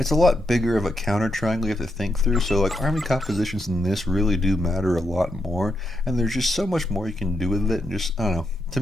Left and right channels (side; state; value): both; normal; correlation 0.82